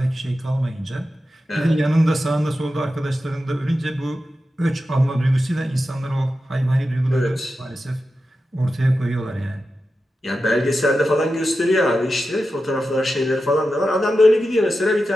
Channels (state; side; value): normal; both; correlation 0.91